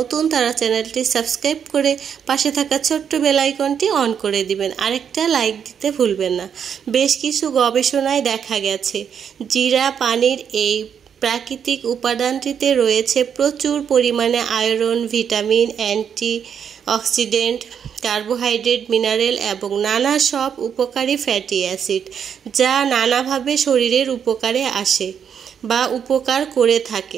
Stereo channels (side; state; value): left; quieter; 7.8 dB